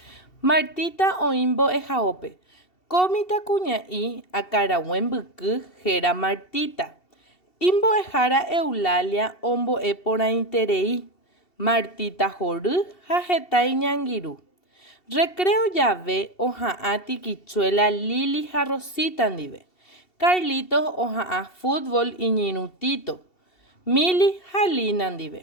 Martita Oimbo de Jaope. Comita cuñaí a carahuembuku gera Martita. Imbo ejara Eulalia ombo epora interei. Martita joru jajetai ñangiru. Recreo llave oja'a tiquichuela Lili Jarrosita ndive. Carlitos oja'a fútbol iñirutito. Mili jalina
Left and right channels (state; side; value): late; right; 2.7 ms